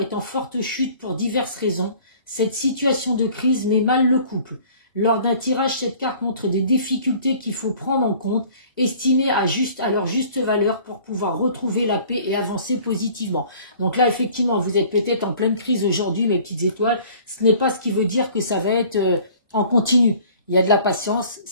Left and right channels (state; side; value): inverted; both; correlation -0.50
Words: en forte chute pour diverses raisons. Cette situation de crise met mal le couple. Lors d'un tirage, cette carte montre des difficultés qu'il faut prendre en compte, estimées à leur juste valeur pour pouvoir retrouver la paix et avancer positivement. Donc là, effectivement, vous êtes peut-être en pleine crise aujourd'hui, mes petites étoiles. Ce n'est pas ce qui veut dire que ça va être en continu. Il y a de la patience.